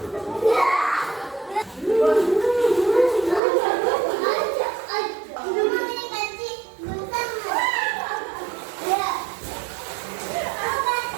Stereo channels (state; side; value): drops out; left; at 3.4 s